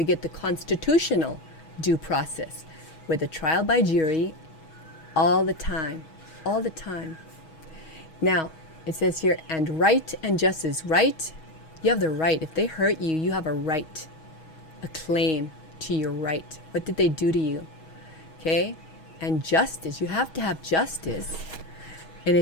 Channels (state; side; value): late; right; 6.3 ms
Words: get the constitutional due process with a trial by jury all the time. Now, it says here, and right and justice. Right, you have the right. If they hurt you, you have a right, a claim to your right. What did they do to you? Okay? And justice, you have to have justice. And